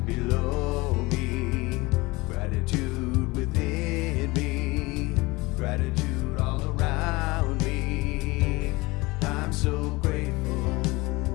below me, gratitude within me, gratitude all around me. I'm so grateful.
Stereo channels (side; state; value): right; quieter; 22.7 dB